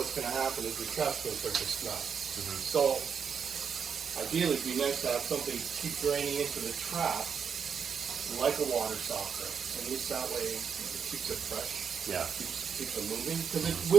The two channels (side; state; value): left; quieter; 6.8 dB